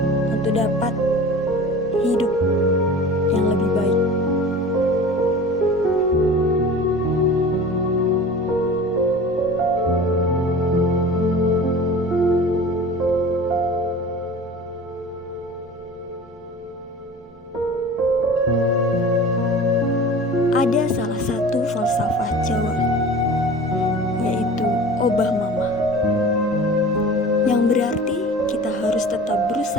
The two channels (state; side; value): normal; both; correlation 0.39